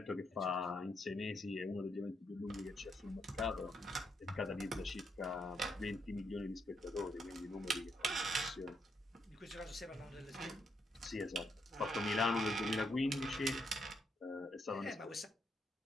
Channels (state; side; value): normal; both; correlation 0.78